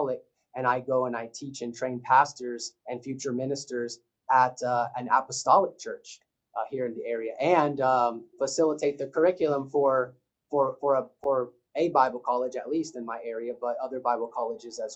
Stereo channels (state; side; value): identical; both; correlation 1.00